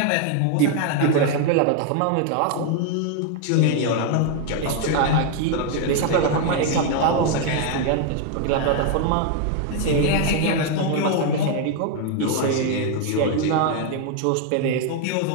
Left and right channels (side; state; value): both; different; correlation 0.01